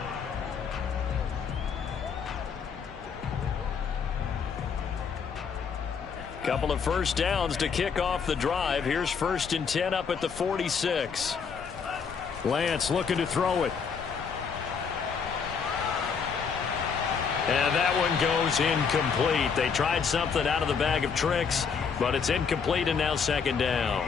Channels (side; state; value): right; quieter; 6.1 dB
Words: Couple of first downs to kick off the drive. Here's 1st and 10 up at the 46. Lance looking to throw it. And that one goes incomplete. They tried something out of the bag of tricks, but it's incomplete, and now 2nd down.